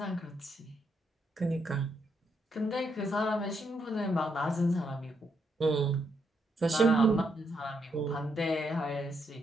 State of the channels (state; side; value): normal; both; correlation 0.78